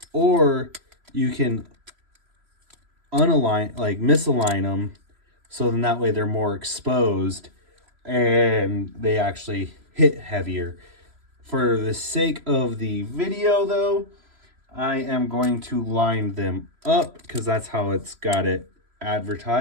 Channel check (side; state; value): left; late; 3.0 ms